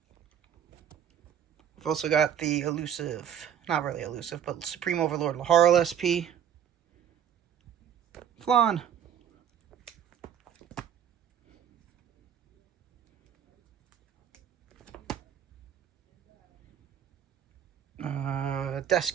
We've also got the elusive, not really elusive, but Supreme Overlord Laharl SP. Flan.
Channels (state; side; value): quieter; left; 9.0 dB